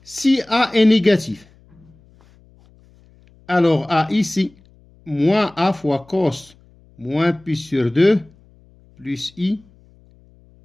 Si A est négatif, alors A ici, moins A fois cos moins pi sur 2 plus I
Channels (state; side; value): noise; left; hum, 29 dB below the sound